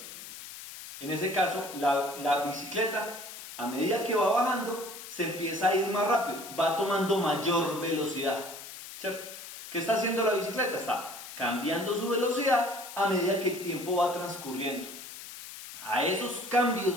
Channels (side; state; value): left; noise; hiss, 12 dB below the sound